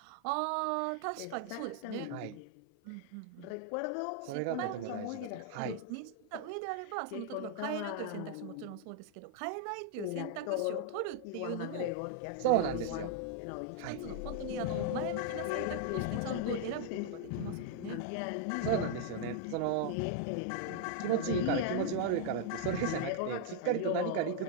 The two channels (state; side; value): different; both; correlation 0.00